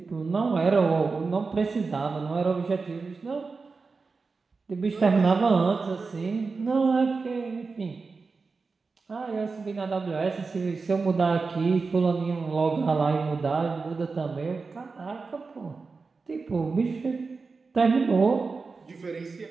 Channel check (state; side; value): quieter; left; 4.4 dB